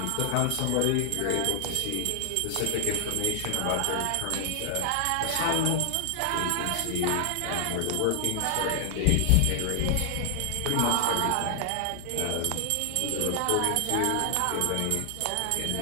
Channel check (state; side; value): different; both; correlation 0.00